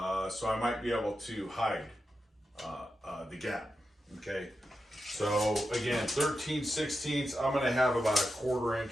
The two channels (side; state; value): both; normal; correlation 0.89